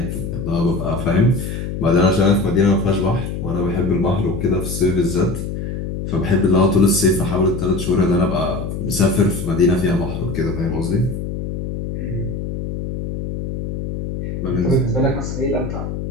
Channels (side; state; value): left; noise; hum, 5 dB below the sound